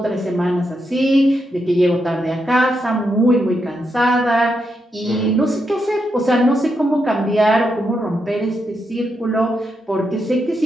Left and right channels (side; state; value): both; normal; correlation 0.83